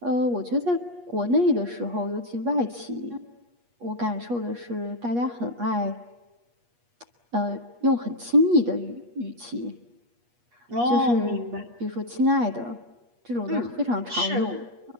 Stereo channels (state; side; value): late; left; 8.4 ms